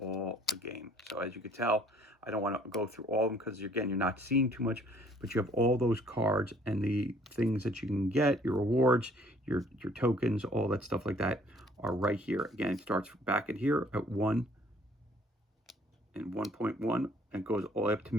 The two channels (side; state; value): both; normal; correlation 0.59